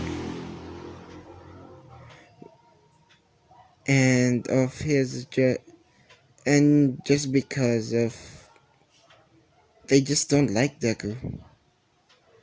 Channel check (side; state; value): both; identical; correlation 1.00